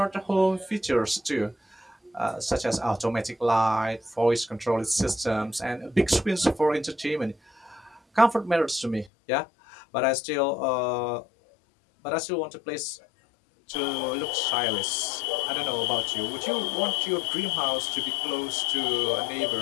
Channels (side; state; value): right; drops out; at 9.1 s